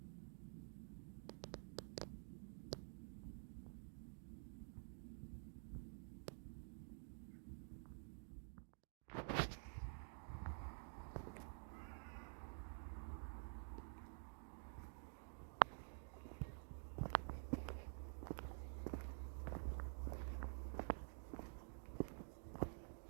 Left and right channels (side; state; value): left; silent; digital silence